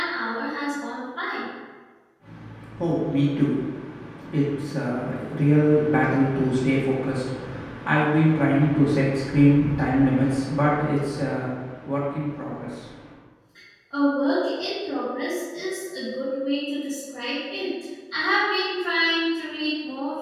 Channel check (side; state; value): both; identical; correlation 1.00